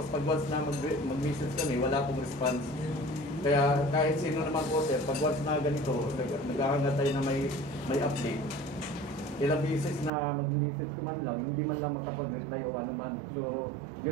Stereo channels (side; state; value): left; drops out; at 10.1 s